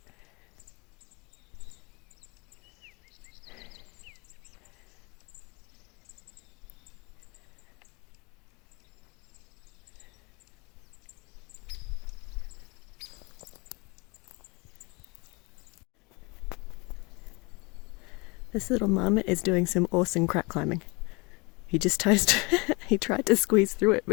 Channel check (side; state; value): right; quieter; 27.8 dB